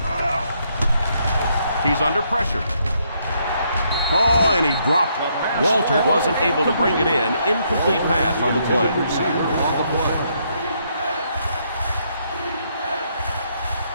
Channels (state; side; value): inverted; both; correlation -0.73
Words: He's under pressure. Oh, and he dropped it. Walter wasn't able to bring it in. Incomplete pass on the play.